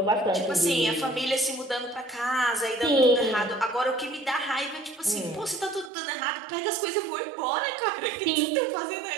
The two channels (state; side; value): drops out; left; at 5.9 s